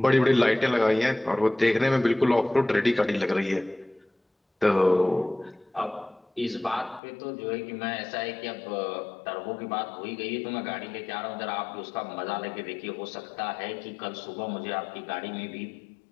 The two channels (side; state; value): right; drops out; at 7.0 s